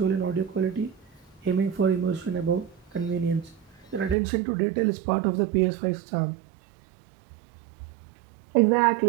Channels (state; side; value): drops out; left; at 4.2 s